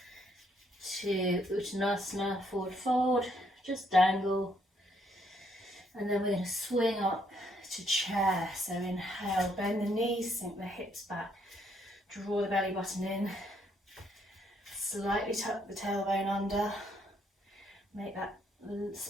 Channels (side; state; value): both; normal; correlation 0.71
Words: to Uttanasana, forward fold, just dangle. And then we're going to swing up to chair. So inhale, bend the knees, sink the hips back, draw the belly button in, slightly tuck the tailbone under, make that